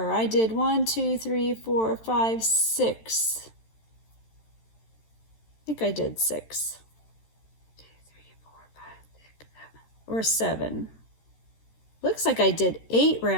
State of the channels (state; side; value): late; right; 13 ms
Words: I did 1, 2, 3, 4, 5, 6. I think I did 6. 2, 3, 4, 5, 6, 7. Or 7. Looks like I did 8